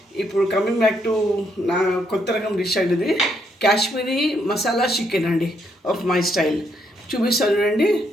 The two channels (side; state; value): both; normal; correlation 0.74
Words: ఇప్పుడు కమింగ్ బ్యాక్ టు నా కొత్త రకం డిష్ అండి. ఇది కాశ్మీరీ మసాలా చికెన్ అండి, ఆఫ్ మై స్టైల్. చూపిస్తాను చూడండి.